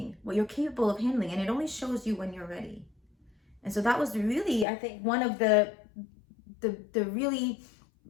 what you're capable of handling, and it only shows you when you're ready. And so that was really, I think, one of the really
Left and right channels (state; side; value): drops out; right; at 4.7 s